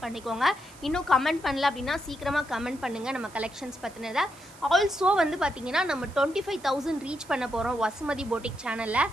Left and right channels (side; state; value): right; noise; hiss, 22 dB below the sound